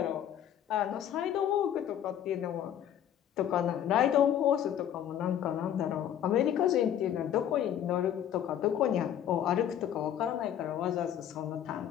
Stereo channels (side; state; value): right; quieter; 10.2 dB